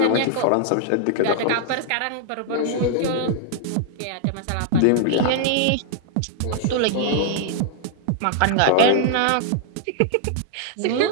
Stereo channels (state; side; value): different; both; correlation 0.00